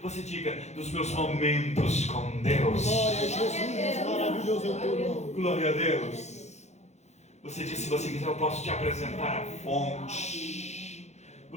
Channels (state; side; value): late; right; 0.33 ms